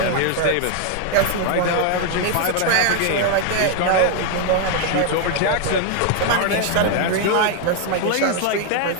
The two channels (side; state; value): both; different; correlation 0.01